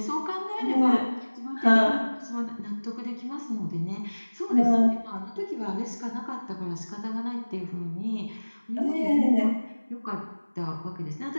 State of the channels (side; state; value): both; inverted; correlation -1.00